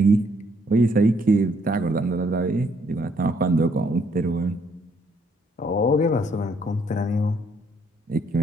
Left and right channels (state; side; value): normal; both; correlation 0.69